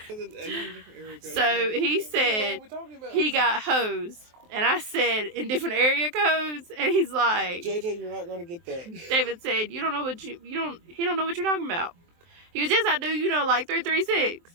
So he said he got hosed, and I said in different area codes, and he's like, JJ, you're not gonna get that. David said, he don't know what you're talking about. He goes, yes I do, like 336.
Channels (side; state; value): left; late; 23 ms